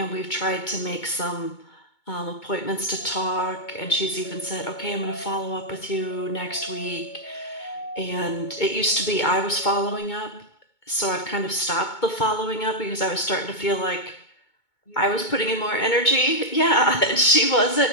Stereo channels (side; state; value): right; late; 2.2 ms